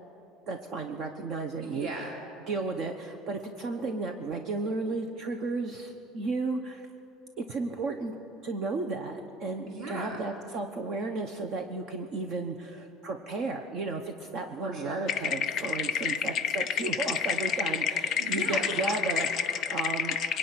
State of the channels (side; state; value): both; normal; correlation 0.43